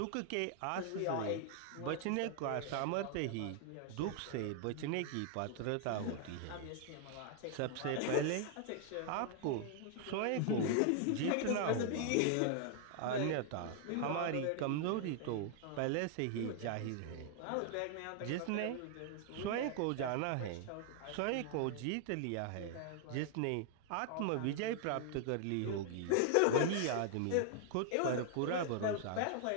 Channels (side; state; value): both; different; correlation 0.00